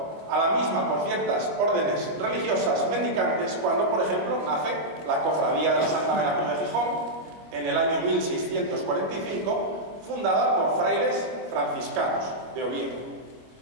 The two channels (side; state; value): left; late; 25 ms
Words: a la misma por ciertas órdenes religiosas mendicantes cuando, por ejemplo, nace la Cofradía de la Santa Veracruz de Gijón en el año 1645, fundada por frailes franciscanos de Oviedo.